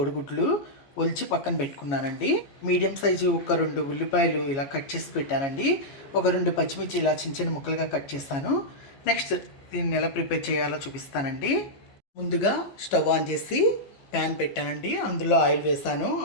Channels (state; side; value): late; right; 14 ms